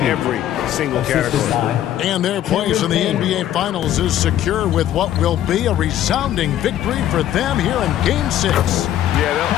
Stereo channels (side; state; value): right; quieter; 11.9 dB